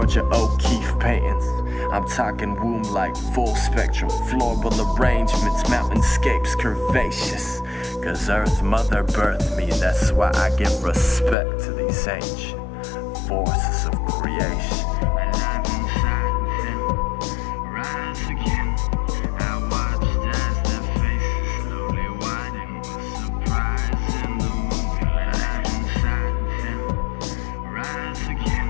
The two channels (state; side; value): drops out; right; at 11.4 s